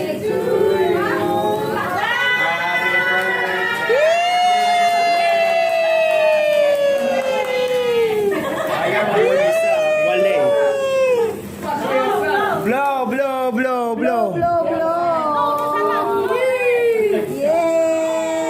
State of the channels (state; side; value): identical; both; correlation 1.00